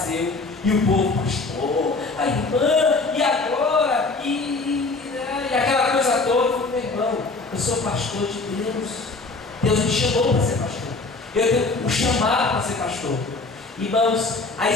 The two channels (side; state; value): right; quieter; 3.7 dB